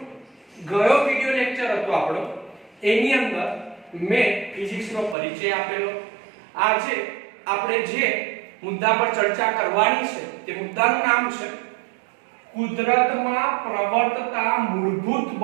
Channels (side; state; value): left; drops out; at 5.2 s